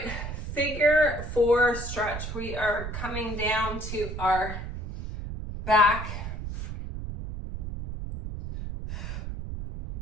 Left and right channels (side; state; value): right; noise; rumble, 7 dB below the sound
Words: figure 4 stretch. We are coming down to our back.